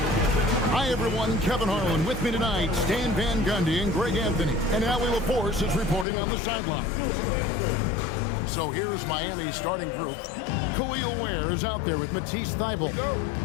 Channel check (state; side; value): drops out; right; at 6.1 s